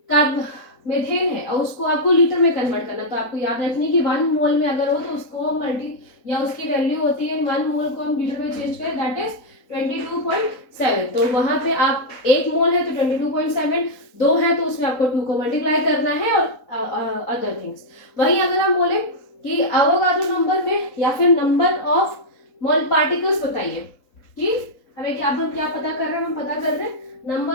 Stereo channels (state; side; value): late; right; 4.2 ms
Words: का मेथेन है और उसको आपको लीटर में कन्वर्ट करना, तो आपको याद रखनी कि 1 मोल में अगर हो तो उसको मल्टी या उसकी वैल्यू होती है 1 मोल को हम लीटर में चेंज करें दैट इज 22.7, तो वहां पे आप 1 मोल है तो 22.7, 2 है तो उसमें आपको 2 को मल्टीप्लाई करना है और अदर थिंग्स। वहीं अगर हम बोले कि एवोगाड्रो नंबर में या फिर नंबर ऑफ मोल पार्टिकल्स बताइए कि हमें क्या पता कर रहे हैं, हम पता कर रहे हैं